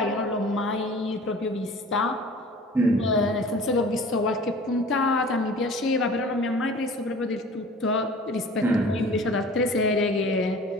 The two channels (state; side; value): normal; both; correlation 0.44